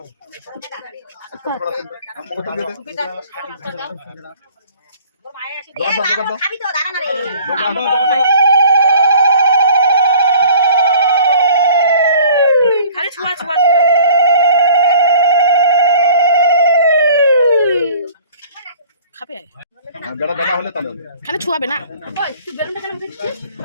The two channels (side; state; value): both; inverted; correlation -0.50